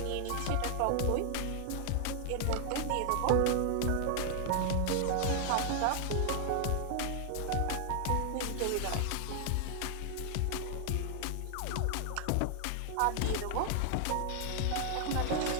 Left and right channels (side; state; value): both; different; correlation 0.00